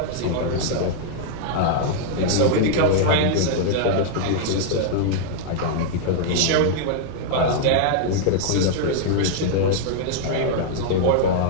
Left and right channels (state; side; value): different; both; correlation -0.01